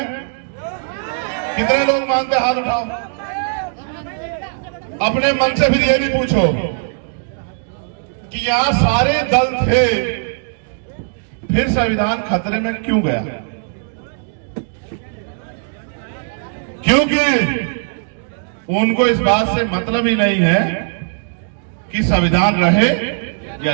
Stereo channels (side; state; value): left; silent; digital silence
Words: कितने लोग मानते? हाथ उठाओ। अपने मन से फिर ये भी पूछो कि यहां सारे दल थे, फिर संविधान खतरे में क्यों गया? क्योंकि उनको इस बात से मतलब ही नहीं है कि संविधान रहे या